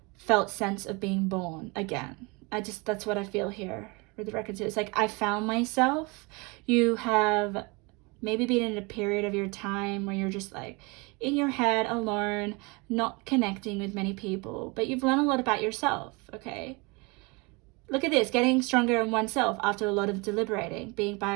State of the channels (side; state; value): left; quieter; 28.0 dB